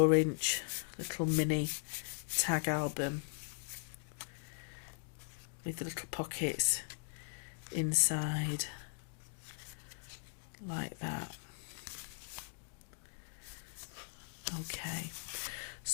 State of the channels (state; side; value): silent; right; digital silence